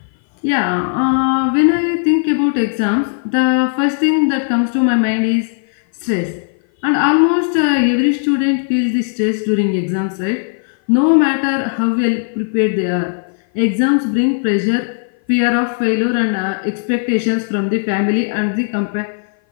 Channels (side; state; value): right; silent; 56 dB below the other